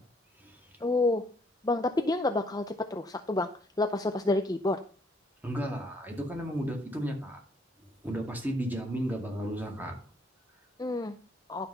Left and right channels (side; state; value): both; normal; correlation 0.67